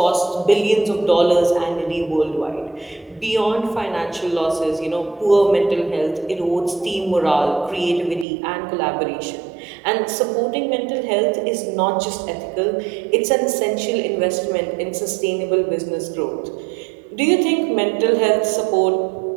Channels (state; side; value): drops out; left; at 8.2 s